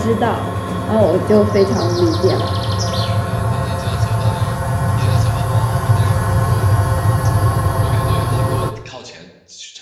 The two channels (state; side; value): identical; both; correlation 1.00